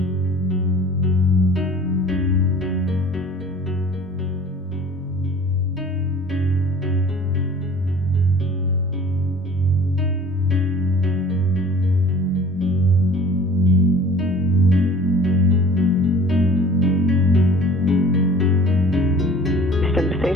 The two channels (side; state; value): both; normal; correlation 0.47